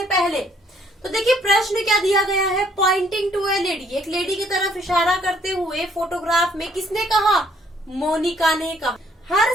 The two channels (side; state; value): both; normal; correlation 0.65